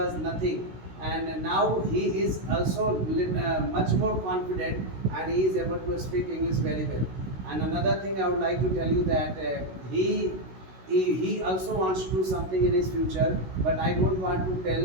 nothing, and now he is also much more confident, and he is able to speak English very well. And another thing I would like to tell you that he also wants to do something in his future, but I don't want to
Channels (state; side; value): late; left; 16 ms